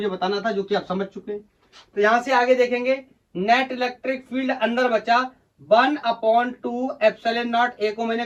बताना था जो कि आप समझ चुके हैं। तो यहां से आगे देखेंगे, नेट इलेक्ट्रिक फील्ड अंदर बचा 1 अपॉन 2 एप्सिलॉन नॉट A को मैंने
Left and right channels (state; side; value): identical; both; correlation 1.00